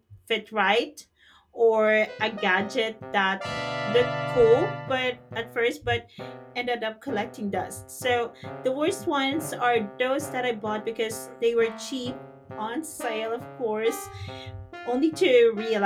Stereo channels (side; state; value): both; identical; correlation 1.00